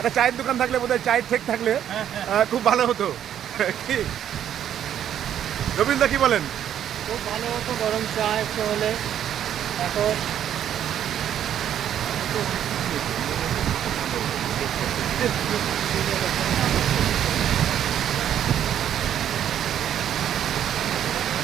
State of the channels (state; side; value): quieter; left; 10.2 dB